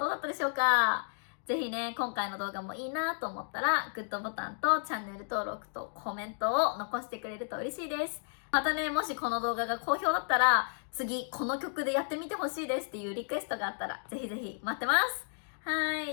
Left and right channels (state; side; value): silent; right; digital silence